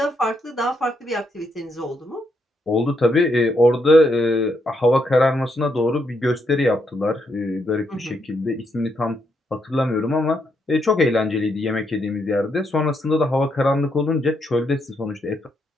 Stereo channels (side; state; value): both; normal; correlation 0.78